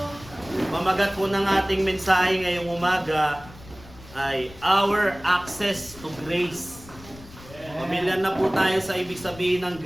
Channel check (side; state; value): left; noise; rumble, 19 dB below the sound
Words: Pamagat po ng ating mensahe ngayong umaga ay our access to grace. Pamilyar na po tayo sa ibig sabihin ng